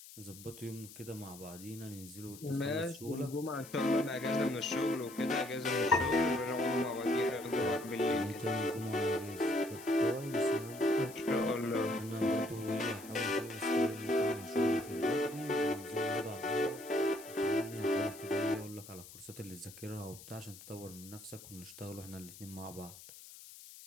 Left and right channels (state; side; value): noise; left; hiss, 17 dB below the sound